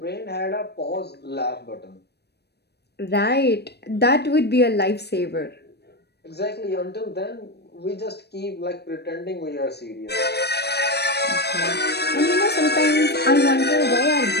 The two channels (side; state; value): right; late; 0.48 ms